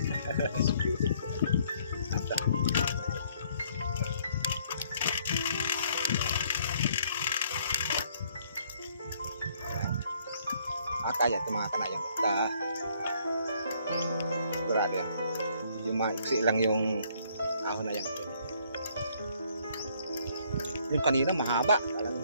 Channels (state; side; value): inverted; both; correlation -0.65